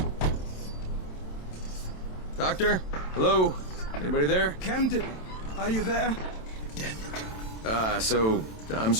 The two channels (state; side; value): late; right; 27 ms